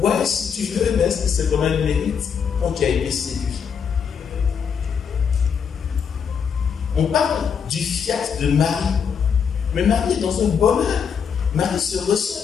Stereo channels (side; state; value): right; quieter; 6.9 dB